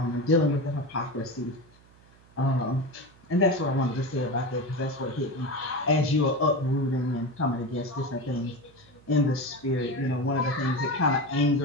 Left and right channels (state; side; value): noise; right; hum, 27 dB below the sound